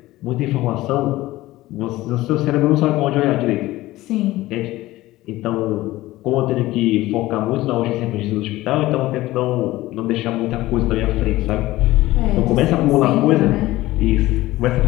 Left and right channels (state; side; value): quieter; right; 17.4 dB